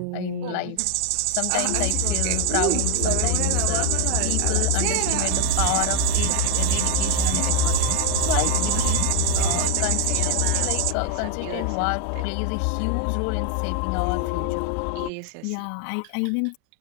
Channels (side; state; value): both; different; correlation 0.01